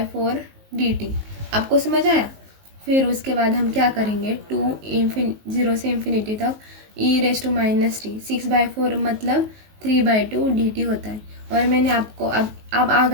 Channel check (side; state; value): left; late; 19 ms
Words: dt। आपको समझ आया। फिर उसके बाद हम क्या करेंगे, 0 से इन्फिनिटी तक e⁻−t 6/4 मतलब 3/2 dt होता है। और मैंने आपको अब आ